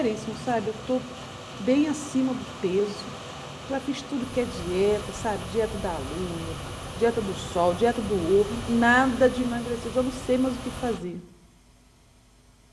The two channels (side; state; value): both; identical; correlation 1.00